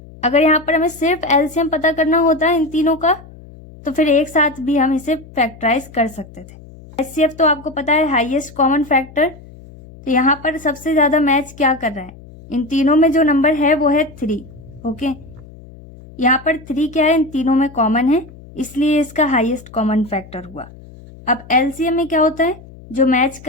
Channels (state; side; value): noise; left; hum, 20 dB below the sound